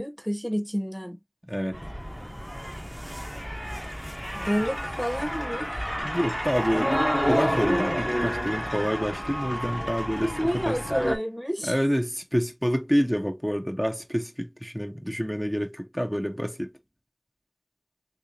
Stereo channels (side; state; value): both; identical; correlation 1.00